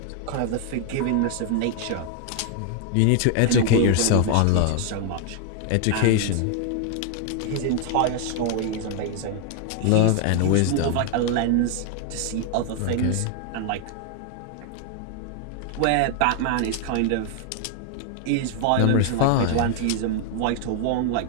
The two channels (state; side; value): different; both; correlation 0.01